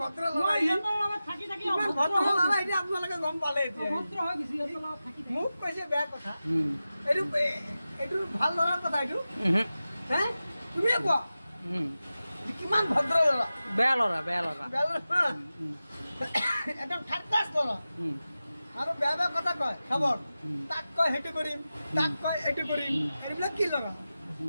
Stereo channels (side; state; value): both; inverted; correlation -0.94